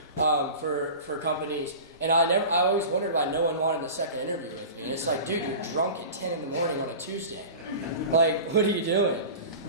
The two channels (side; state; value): both; inverted; correlation -0.35